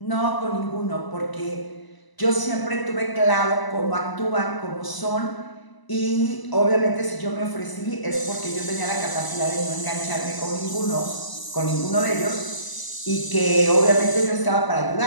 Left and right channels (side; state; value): right; late; 1.0 ms